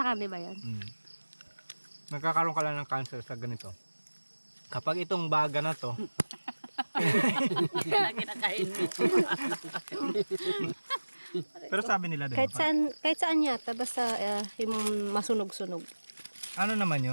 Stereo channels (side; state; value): both; inverted; correlation -1.00